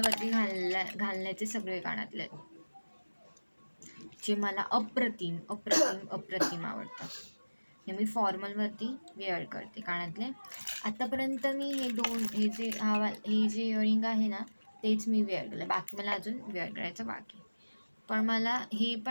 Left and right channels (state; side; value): inverted; both; correlation -1.00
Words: घालण्याचे सगळे कानातले आहेत, जे मला अप्रतिम अप्रतिम अप्रतिम आवडतात. हे मी फॉर्मलवरती वेअर करते कानातले. आतापर्यंत मी हे जे इयरिंग आहे ना तेच मी वेअर केलं, बाकी मला अजून वेअर करायचं बाकी. पण मला हे